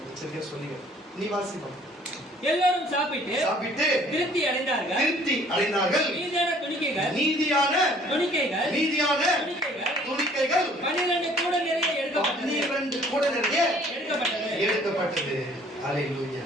சரியா சொல்லுங்க. நீ வாசிப்போம். எல்லாரும் சாப்பிட்டு திருப்தி அடைந்தார்கள். நீதியான துணிக்கைகள் 12 கூட நிறைய எடுக்கப்பட்டது. அல்லேலூயா.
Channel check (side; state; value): both; normal; correlation 0.56